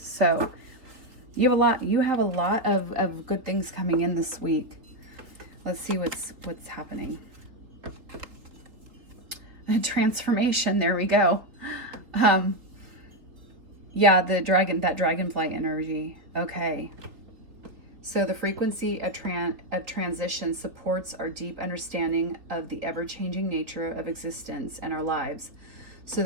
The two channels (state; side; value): late; left; 3.5 ms